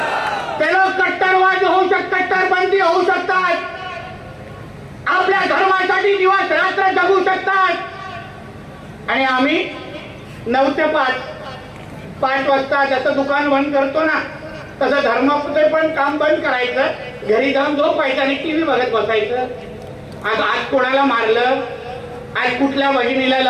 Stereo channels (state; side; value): identical; both; correlation 1.00